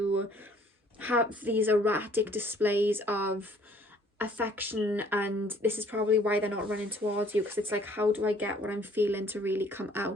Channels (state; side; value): normal; both; correlation 0.58